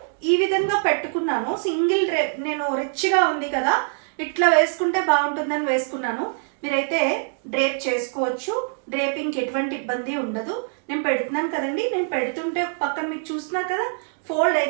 ఈ విధంగా పెట్టుకున్నాను. సింగిల్ డ్రేప్, నేను రిచ్గా ఉంది కదా ఇట్లా వేసుకుంటే బాగుంటుందని వేసుకున్నాను. మీరైతే డ్రేప్ చేసుకోవచ్చు. డ్రేపింగ్కి ఎటువంటి ఇబ్బంది ఉండదు. నేను పెడుతున్నాను కదండి, నేను పెడుతుంటే పక్కన మీకు చూస్తున్నారు కదా ఫోల్డ్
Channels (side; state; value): left; silent; digital silence